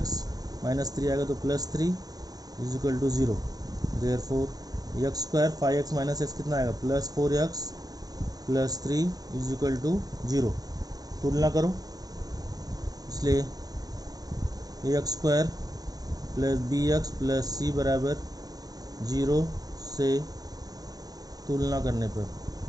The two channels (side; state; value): left; late; 0.18 ms